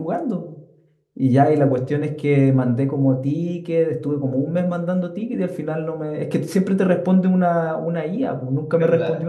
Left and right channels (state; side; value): identical; both; correlation 1.00